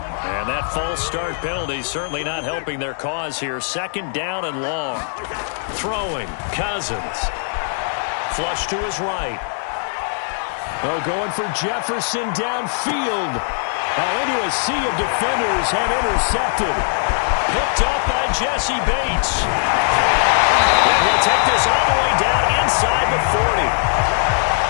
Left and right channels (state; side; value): silent; right; digital silence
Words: And that false start penalty certainly not helping their cause here. 2nd down and long. Throwing, Cousins. Flush to his right. Oh, going for Jefferson downfield. Oh, into a sea of defenders and intercepted. Picked up by Jesse Bates. And he'll take this all the way down inside the 40.